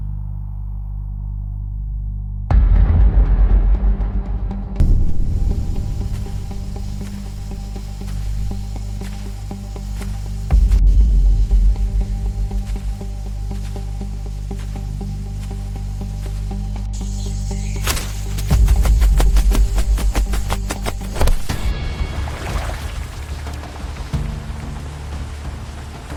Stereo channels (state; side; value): identical; both; correlation 1.00